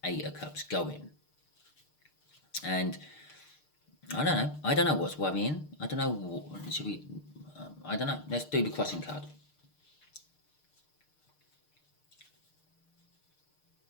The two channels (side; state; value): right; late; 6.6 ms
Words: 8 of Cups going. And I don't know what's worrying. I don't know. Should we? I don't know. Let's do the crossing card.